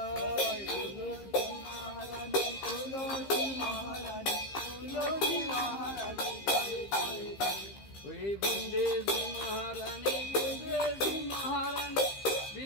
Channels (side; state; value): right; late; 15 ms